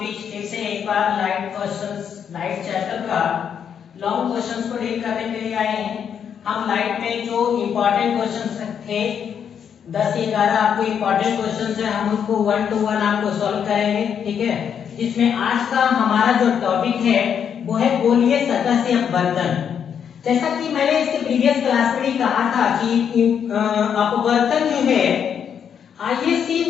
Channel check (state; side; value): quieter; right; 7.9 dB